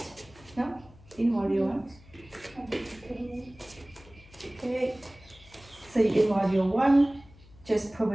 No? In warrior one. Okay. So in warrior one, just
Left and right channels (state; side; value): noise; left; hum, 24 dB below the sound